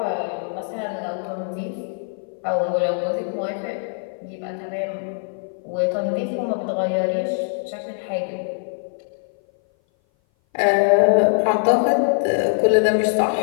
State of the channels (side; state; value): right; silent; 58 dB below the other